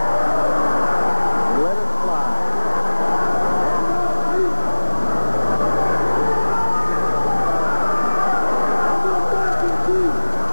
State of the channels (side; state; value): both; inverted; correlation -1.00